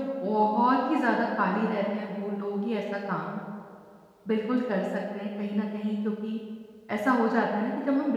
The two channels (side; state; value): both; identical; correlation 1.00